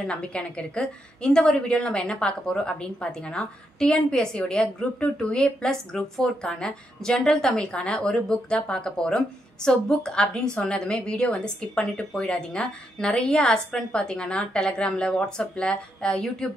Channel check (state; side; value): normal; both; correlation 0.80